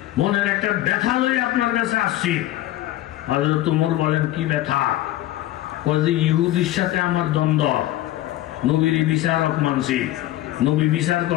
মনের একটা ব্যথা লই আপনার কাছে আসছি হযরত ওমর বলেন কি ব্যথা কয় যে ইহুদির সাথে আমার দ্বন্দ্ব নবীর বিচারক মানছি নবী বিচার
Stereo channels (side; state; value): right; quieter; 14.8 dB